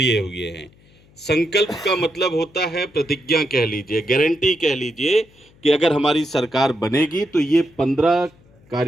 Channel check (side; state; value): left; noise; hum, 29 dB below the sound